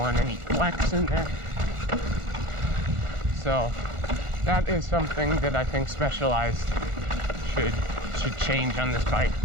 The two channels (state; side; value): late; left; 1.4 ms